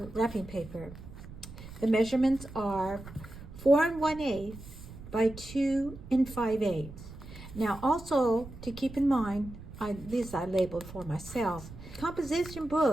wrapping paper, the measurements are 4 1/8 by 2 5/8. Now also to keep in mind, these I labeled for myself. Composition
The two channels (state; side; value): noise; right; rumble, 15 dB below the sound